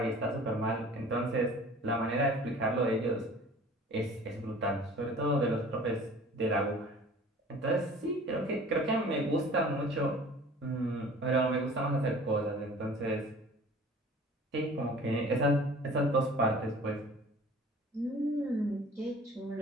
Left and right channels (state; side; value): normal; both; correlation 0.46